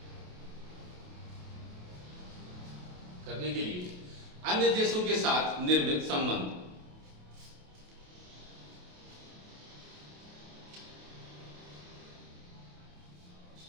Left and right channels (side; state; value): left; late; 28 ms